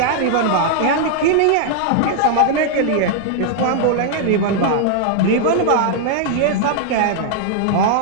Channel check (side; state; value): both; different; correlation -0.01